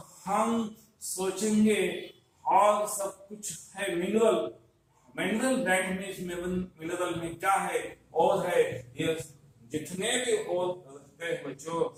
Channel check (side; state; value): both; identical; correlation 1.00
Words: हम सोचेंगे और सब कुछ है मिनरल दैट मींस मिनरल में क्या है और है ये जितने भी और रहते हैं बच्चों